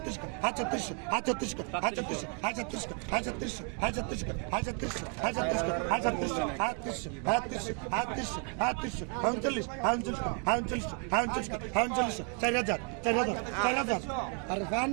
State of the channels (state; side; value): quieter; left; 38.8 dB